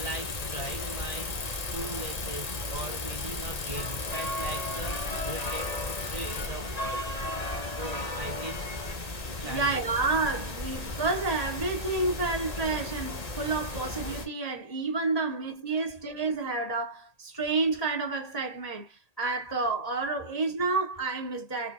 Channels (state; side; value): late; right; 1.8 ms